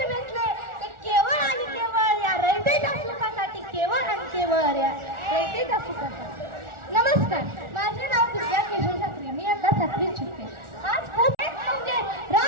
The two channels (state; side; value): late; left; 1.4 ms